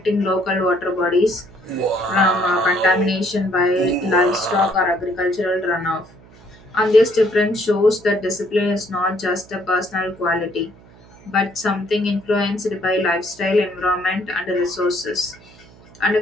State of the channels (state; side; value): noise; right; hum, 24 dB below the sound